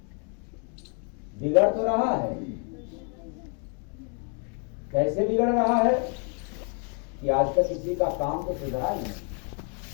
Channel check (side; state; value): right; quieter; 37.9 dB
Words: बिगड़ तो रहा है। कैसे बिगड़ रहा है कि आज तक किसी का काम तो सुधरा नहीं,